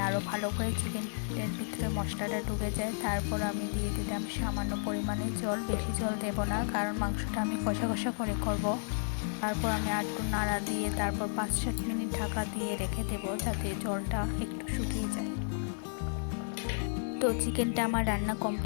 আরও ভালো করে চিকেনের ভিতরে মশলাটা ঢুকে যায়। তারপর আমি দিয়ে দিলাম সামান্য পরিমাণে জল, বেশি জল দেব না, কারণ মাংসটা আমি কষা কষা করে করব। তারপর আমি একটু নাড়া দিয়ে তারপর 5-7 মিনিট ঢাকা দিয়ে রেখে দেব, যাতে জলটা একটু শুকিয়ে যায়। তো চিকেনটা আমার রান্না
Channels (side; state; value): right; silent; 56 dB below the other